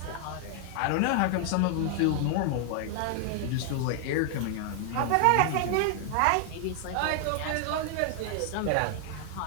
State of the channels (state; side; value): different; both; correlation 0.00